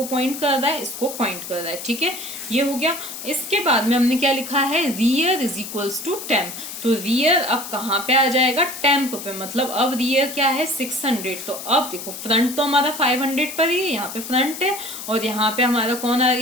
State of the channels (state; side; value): noise; left; hiss, 9 dB below the sound